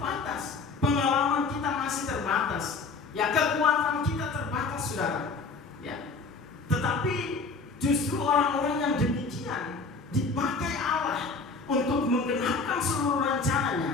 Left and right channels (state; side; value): quieter; right; 4.2 dB